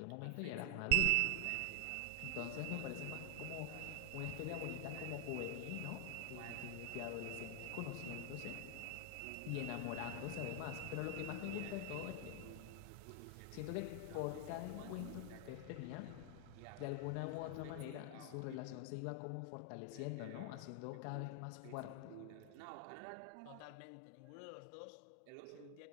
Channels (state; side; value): different; both; correlation 0.00